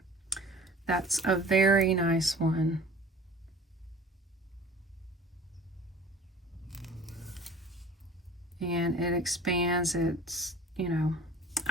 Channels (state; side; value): normal; both; correlation 0.44